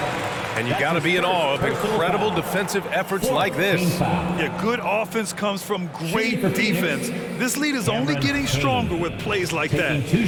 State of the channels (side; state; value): both; identical; correlation 1.00